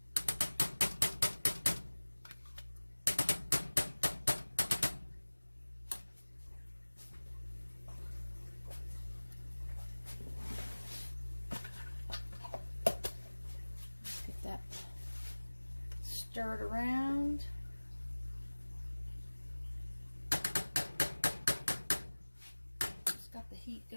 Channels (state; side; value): inverted; both; correlation -1.00